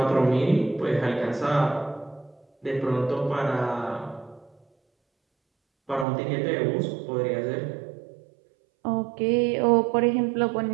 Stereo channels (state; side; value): drops out; left; at 6.1 s